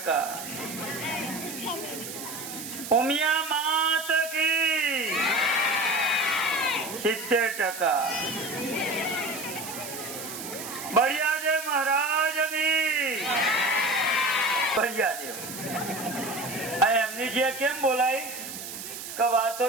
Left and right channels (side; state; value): right; noise; hiss, 9 dB below the sound